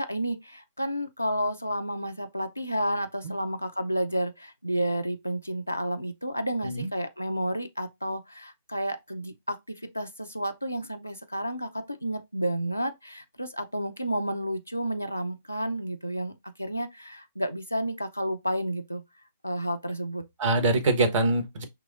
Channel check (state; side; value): inverted; both; correlation -0.79